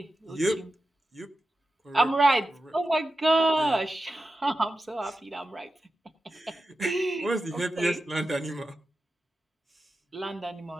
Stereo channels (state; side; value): normal; both; correlation 0.91